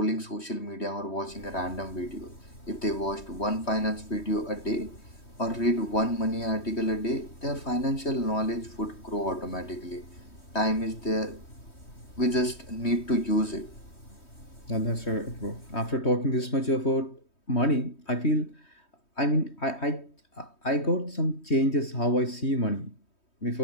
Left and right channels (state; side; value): late; right; 3.2 ms